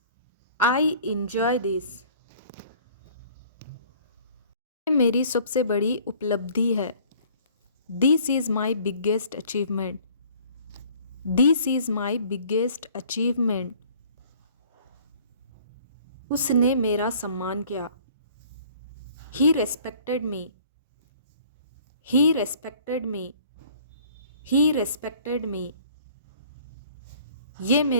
I enjoy this. मेरी सबसे बड़ी उपलब्धि है। This is my biggest achievement. This is my biggest achievement. उसने मेरा सम्मान किया। ही respected me. He respected me. He respected me. ये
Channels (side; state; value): both; inverted; correlation -0.54